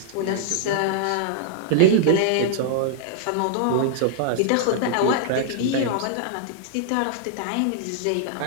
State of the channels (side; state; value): both; different; correlation -0.01